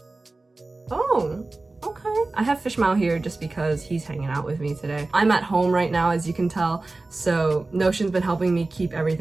Oh, okay. I have FishMao here just because he's hanging out with me today. I'm at home right now, as you can tell, so Notion's been helping me keep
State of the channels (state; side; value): quieter; left; 3.3 dB